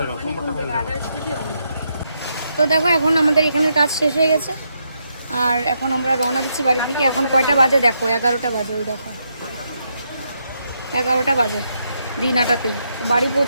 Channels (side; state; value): both; inverted; correlation -0.80